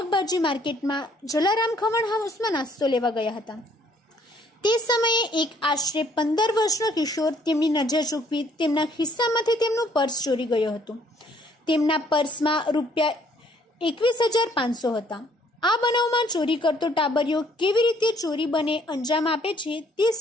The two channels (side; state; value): both; normal; correlation 0.63